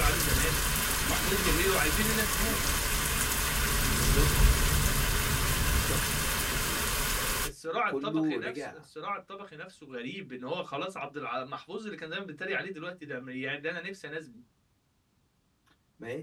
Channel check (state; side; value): identical; both; correlation 1.00